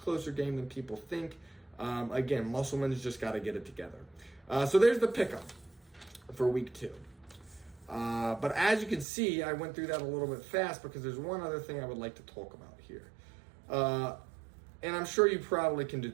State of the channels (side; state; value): left; drops out; at 9.1 s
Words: game than people think. Again, Musselman's just got to get it together. So there's the pickup for week 2. But as you can see, I went through that a little bit fast because there's one other thing I would like to talk about here. And I'm sure you probably can